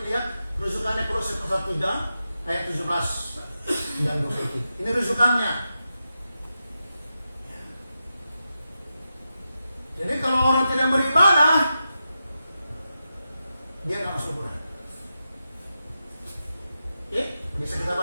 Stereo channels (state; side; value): inverted; both; correlation -0.89